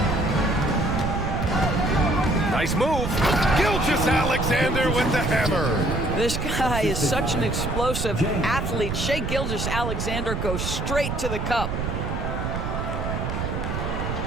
Nice move. Gilgeous-Alexander with the hammer. This guy is such an explosive athlete. Shai Gilgeous-Alexander goes straight to the cup.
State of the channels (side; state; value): right; noise; rumble, 3 dB below the sound